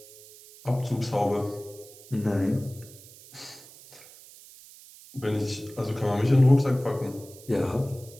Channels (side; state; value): right; noise; hiss, 20 dB below the sound